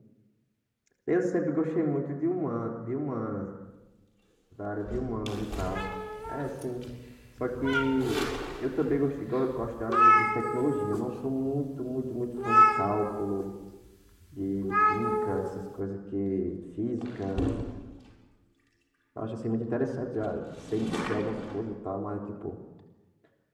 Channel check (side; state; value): both; identical; correlation 1.00